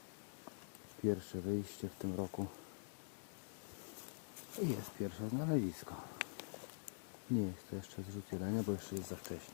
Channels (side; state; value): right; silent; digital silence